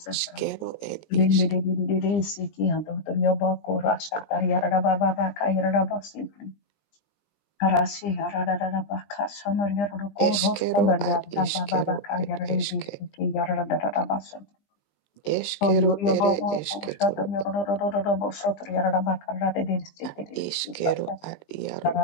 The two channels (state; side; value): late; right; 19 ms